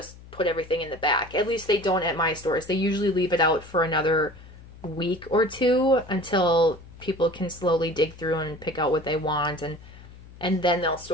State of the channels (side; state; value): left; noise; hum, 19 dB below the sound